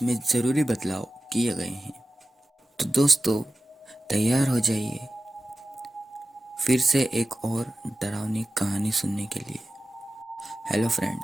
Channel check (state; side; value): normal; both; correlation 0.95